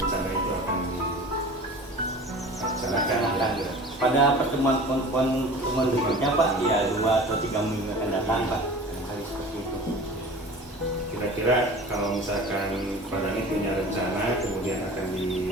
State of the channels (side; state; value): both; normal; correlation 0.39